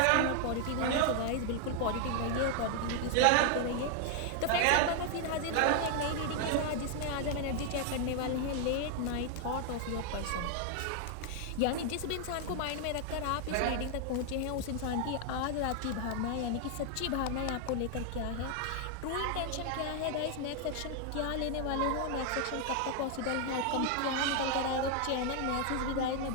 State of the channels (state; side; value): different; both; correlation 0.00